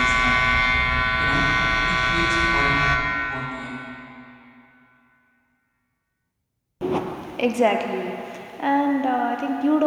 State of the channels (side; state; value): both; identical; correlation 1.00